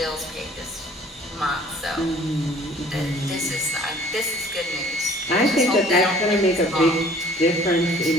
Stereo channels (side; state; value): both; normal; correlation 0.53